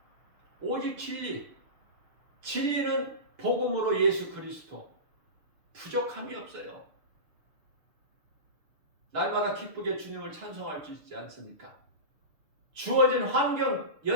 오직 진리. 진리는 복음으로 예수 그리스도. 부족함이 없어요. 날마다 기쁘게 주님을 찬송할 수 있지 않습니까? 주어진 환경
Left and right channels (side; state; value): left; late; 6.7 ms